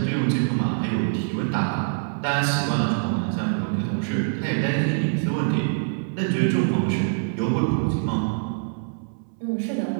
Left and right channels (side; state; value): left; silent; 62 dB below the other